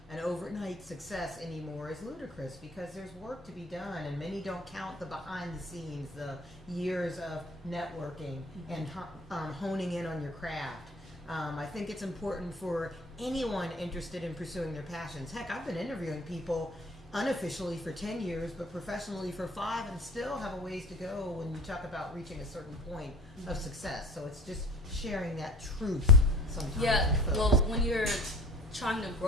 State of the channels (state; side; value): normal; both; correlation 0.45